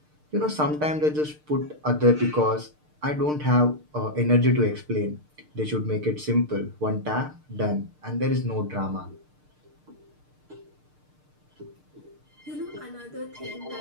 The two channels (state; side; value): late; left; 6.6 ms